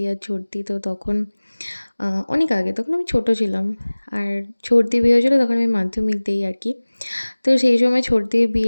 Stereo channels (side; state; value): both; inverted; correlation -1.00